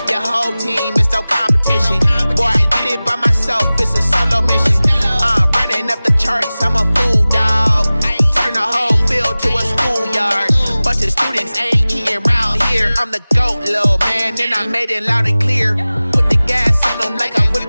your whole team is no competition. Boy, I did it by myself, it's a solo mission. Running up the charts, I'm a fool, dog. Turn the whole field to a schoolyard. Bunch of students ain't eating round here. I'm the GOAT, little man, and I made it loud and clear. Put the gas on them like I'm with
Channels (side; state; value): both; inverted; correlation -0.98